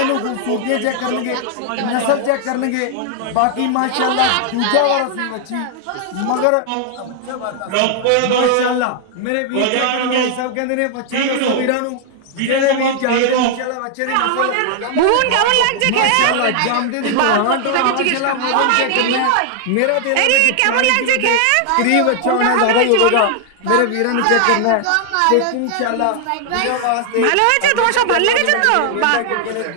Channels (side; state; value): both; different; correlation 0.00